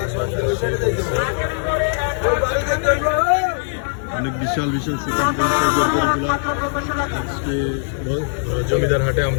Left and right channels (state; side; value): silent; right; digital silence